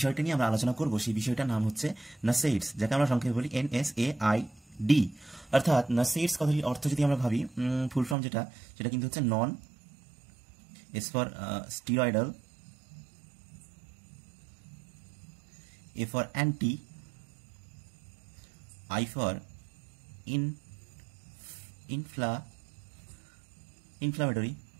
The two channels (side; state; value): left; drops out; at 8.2 s